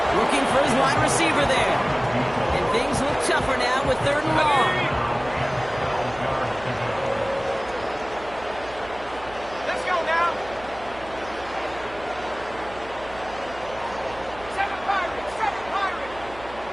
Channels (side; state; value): right; noise; hum, 18 dB below the sound